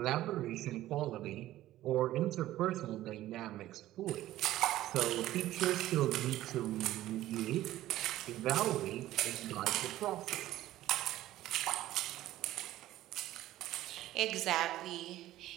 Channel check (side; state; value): left; quieter; 14.7 dB